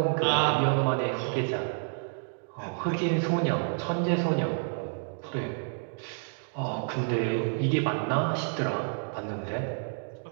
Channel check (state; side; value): silent; left; 58 dB below the other